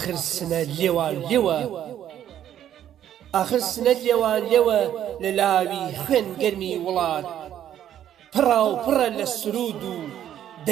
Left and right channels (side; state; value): left; quieter; 10.8 dB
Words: ئاخر سنە لێوان لێوە لە لاوی خوێن گەرمی وڵات پڕا و پڕە لە سرود و